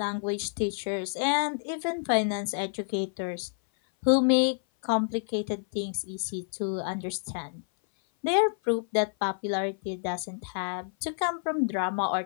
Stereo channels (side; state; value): right; silent; 56 dB below the other